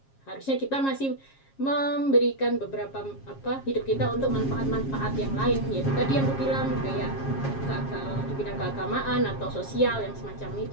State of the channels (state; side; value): late; right; 7.4 ms